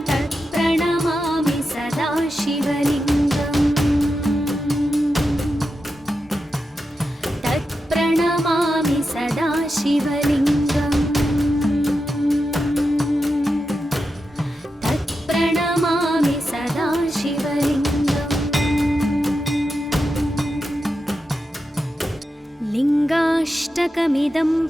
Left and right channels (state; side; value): normal; both; correlation 0.89